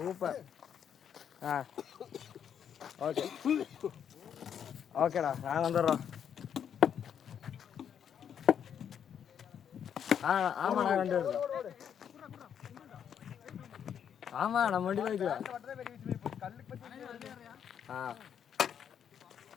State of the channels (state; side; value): quieter; right; 8.5 dB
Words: Okay ஓகேடா, நான் வந்துடுறோம். ஆமாண்ணா, ரெண்டு பேர். ஆமா, நம்ம வண்டி போய்க்கலாம்.